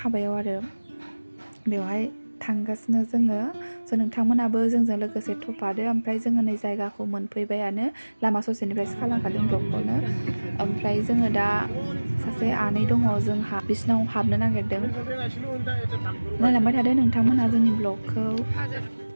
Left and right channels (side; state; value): both; inverted; correlation -1.00